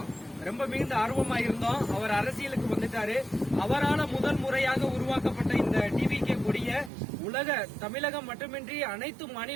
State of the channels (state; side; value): drops out; left; at 6.9 s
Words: ரொம்ப மிகுந்த ஆர்வமா இருந்தோம். அவர் அரசியலுக்கு வந்துட்டாரு. அவரால் முதல் முறையாக உருவாக்கப்பட்ட இந்த டிவிகே கொடிய உலக தமிழகம் மட்டுமின்றி அனைத்து